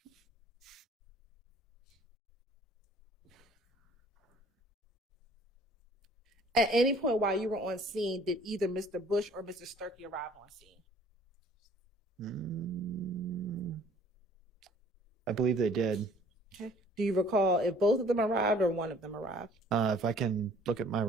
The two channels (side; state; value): both; normal; correlation 0.55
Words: At any point while you were on scene, did either Mr. Bush or Mr. Sturkey arrive on scene? I believe they did. Okay. Do you recall if both of them arrived or one of them arrived? If I can look at my